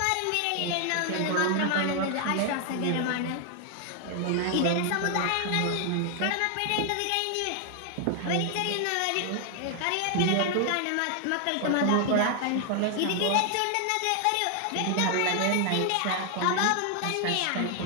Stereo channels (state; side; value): different; both; correlation 0.00